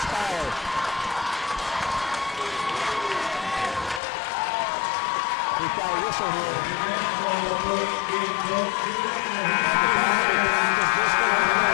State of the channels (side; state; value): right; drops out; at 4.0 s